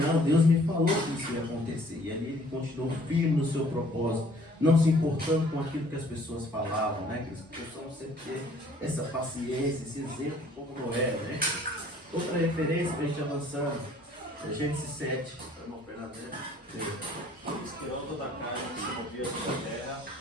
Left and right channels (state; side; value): normal; both; correlation 0.57